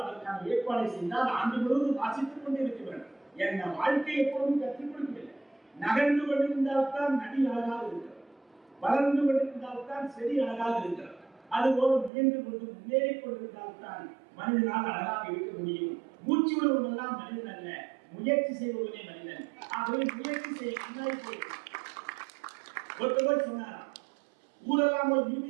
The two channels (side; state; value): left; drops out; at 12.1 s